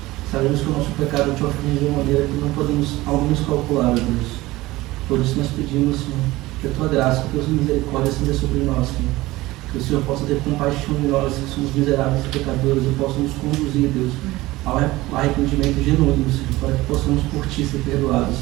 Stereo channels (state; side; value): quieter; left; 18.9 dB